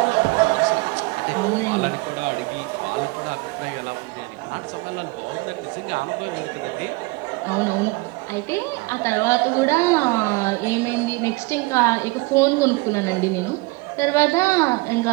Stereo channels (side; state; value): left; quieter; 24.3 dB